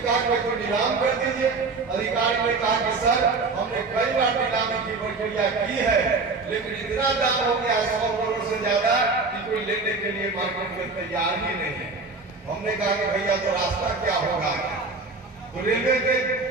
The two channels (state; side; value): quieter; left; 3.9 dB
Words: कहा कि कोई नीलाम कर दीजिए। अधिकारी ने कहा कि सर हमने कई बार नीलामी की प्रक्रिया की है लेकिन इतना दाम हो गया 100 करोड़ से ज्यादा कि कोई लेने के लिए मार्केट में तैयार ही नहीं है। हमने कहा कि भैया तो रास्ता क्या होगा। तो रेलवे के